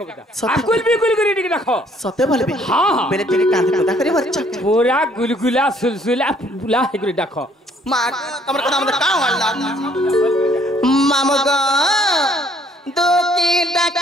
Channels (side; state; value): both; normal; correlation 0.63